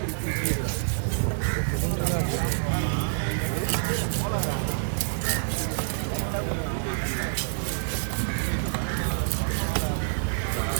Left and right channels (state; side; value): silent; left; digital silence